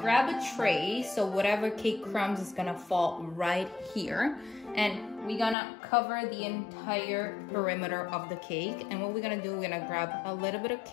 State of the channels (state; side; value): drops out; right; at 5.6 s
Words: grab a tray, so whatever cake crumbs is gonna fall right here, and we're gonna cover the entire perimeter of the cake. And what we're gonna do, we're gonna grab a little bit of